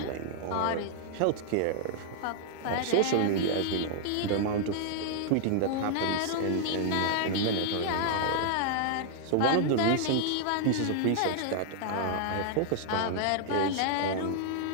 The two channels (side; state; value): both; different; correlation -0.01